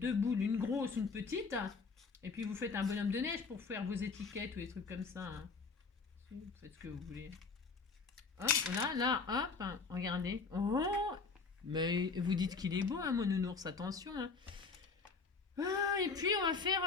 boules, une grosse, une petite. Et puis vous faites un bonhomme de neige pour faire vos étiquettes ou des trucs comme ça. Hein. Vous faites ce que vous voulez. Hop, voilà, là, hop. Regardez. Oh, mais vous dites qu'il est beau, hein, mon nounours. Attention. Hein. Et puis on va faire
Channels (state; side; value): quieter; right; 4.7 dB